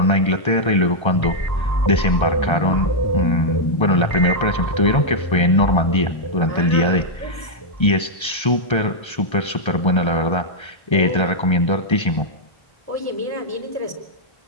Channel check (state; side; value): late; right; 1.3 ms